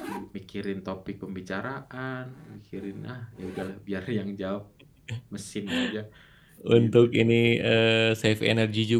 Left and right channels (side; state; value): both; identical; correlation 1.00